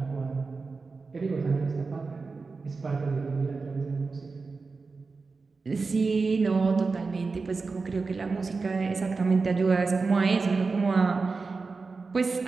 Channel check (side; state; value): left; quieter; 4.3 dB